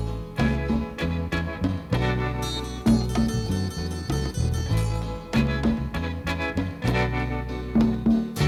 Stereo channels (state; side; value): identical; both; correlation 1.00